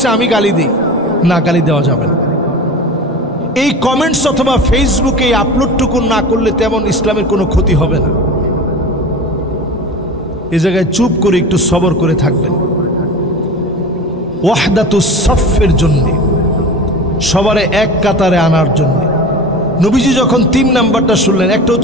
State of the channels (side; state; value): both; normal; correlation 0.33